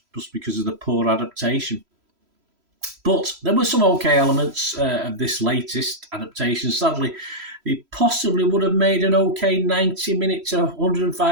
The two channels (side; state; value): left; late; 3.0 ms